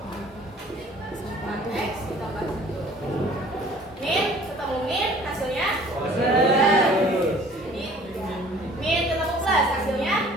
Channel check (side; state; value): both; normal; correlation 0.52